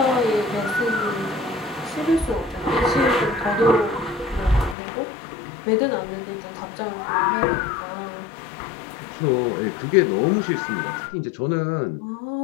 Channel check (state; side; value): drops out; right; at 4.8 s